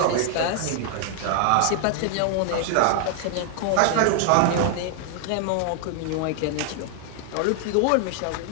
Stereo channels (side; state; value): both; different; correlation 0.00